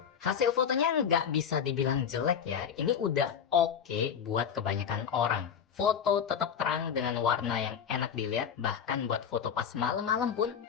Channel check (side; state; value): right; quieter; 7.7 dB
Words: Hasil fotonya nggak bisa dibilang jelek ya. Ini udah oke buat kebanyakan orang. Foto tetap terang dengan warna yang enak dilihat, bahkan buat foto pas malam-malam pun